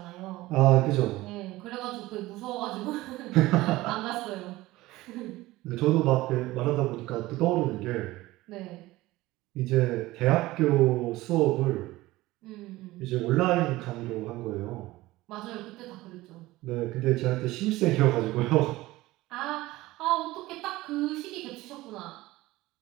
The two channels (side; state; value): left; quieter; 18.4 dB